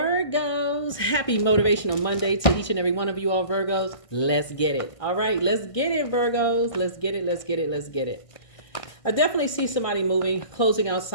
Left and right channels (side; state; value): right; late; 1.6 ms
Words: Happy Motivational Monday to each and every one of you all, Virgos. Let's get it. All right, let's get it, Virgos. Let's get it, let's get it, let's get it. I definitely see somebody moving, closing out